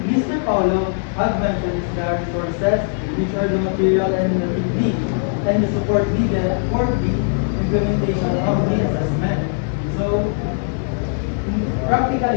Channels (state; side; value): silent; right; 66 dB below the other